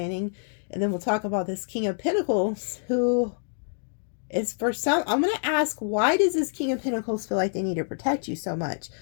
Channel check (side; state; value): right; silent; digital silence